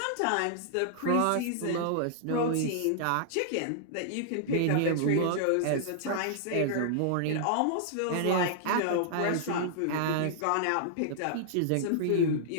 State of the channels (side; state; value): both; different; correlation -0.01